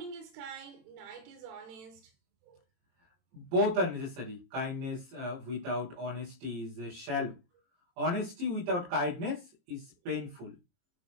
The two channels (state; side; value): late; left; 23 ms